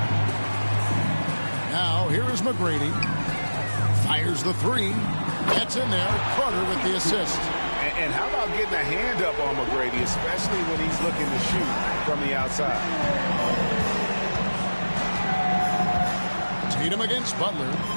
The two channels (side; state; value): both; inverted; correlation -1.00